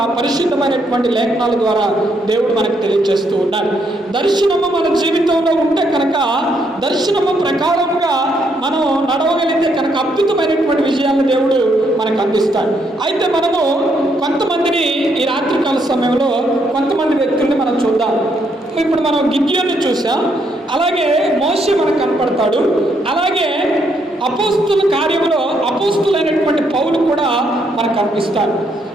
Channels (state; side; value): normal; both; correlation 0.74